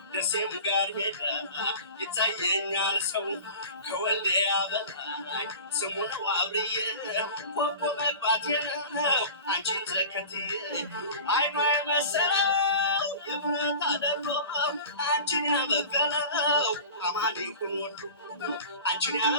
ደሴም ጋር ሄዳ ይታየኛል ሰው ከወልዲያ በላይ ስሙ ነው አብርዬ ኮኮ መግባቴ ነው አንቺን ተከትዬ አይኗ የመሰለው የብረት አደሮ አንቺን ያበቀለው አማን ይሁን ወሎ አንቺን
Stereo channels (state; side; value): inverted; both; correlation -0.37